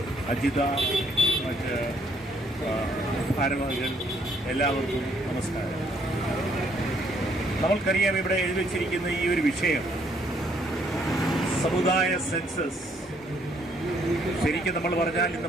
അജിത, മറ്റ് ഭാരവാഹികൾ, എല്ലാവർക്കും നമസ്കാരം. നമ്മൾക്കറിയാം, ഇവിടെ എഴുതി വച്ചിരിക്കുന്ന ഈ ഒരു വിഷയം സമുദായ സെൻസസ്. ശരിക്കും നമ്മൾ പറഞ്ഞാൽ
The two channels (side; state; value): both; normal; correlation 0.68